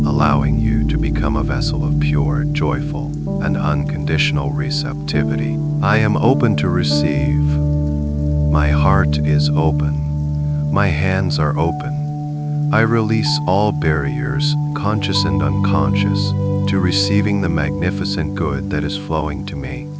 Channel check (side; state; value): both; identical; correlation 1.00